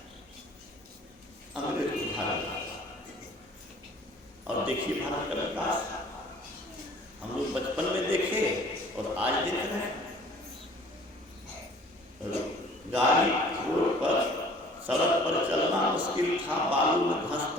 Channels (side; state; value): both; normal; correlation 0.51